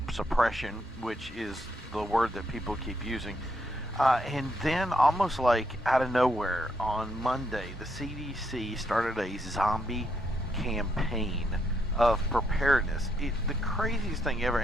suppression, which is the word that people keep using. And then almost like out of nowhere on Monday, the CDC started a zombie campaign of preparedness. The craziest thing ever.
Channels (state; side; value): normal; both; correlation 0.76